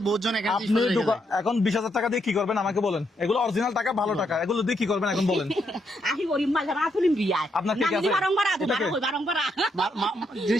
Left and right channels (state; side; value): normal; both; correlation 0.77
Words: বহুত জন এখানে আপনি এখন 20,000 টাকা দিয়ে কি করবেন আমাকে বলেন? এগুলো অরিজিনাল টাকা, ভালো টাকা, এগুলো দিয়ে কি করবেন এখন বলেন? আপনার ঠিক আছে?